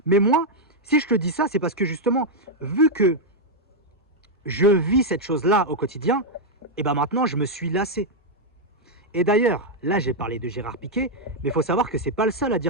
Mais moi, si je te dis ça, c'est parce que justement, vu que je vis cette chose-là au quotidien, et ben maintenant, je me suis lassé. Et d'ailleurs, là, j'ai parlé de Gérard Piqué, mais il faut savoir que c'est pas le seul à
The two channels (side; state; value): both; normal; correlation -0.01